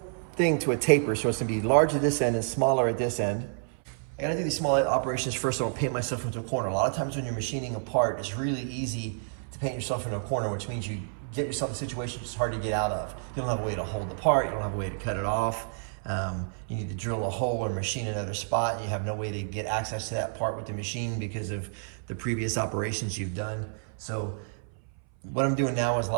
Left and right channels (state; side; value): silent; left; 58 dB below the other